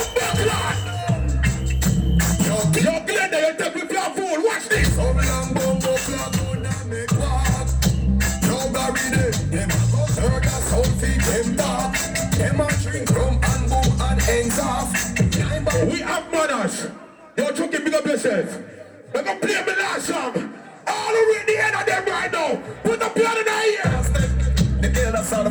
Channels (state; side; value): identical; both; correlation 1.00